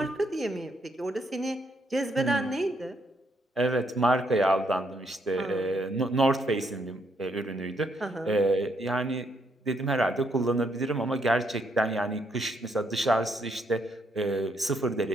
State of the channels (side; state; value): both; normal; correlation 0.74